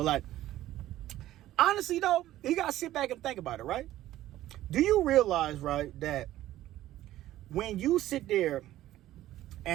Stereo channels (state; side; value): quieter; left; 14.2 dB